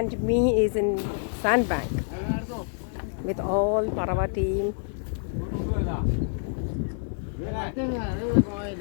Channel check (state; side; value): silent; right; digital silence